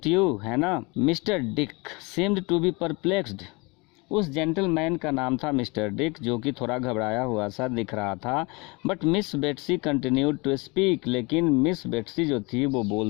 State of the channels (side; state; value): right; quieter; 27.2 dB